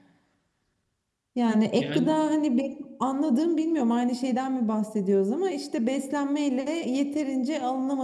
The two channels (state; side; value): identical; both; correlation 1.00